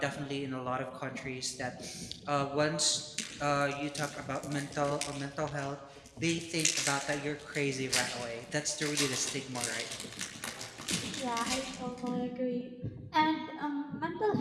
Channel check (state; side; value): identical; both; correlation 1.00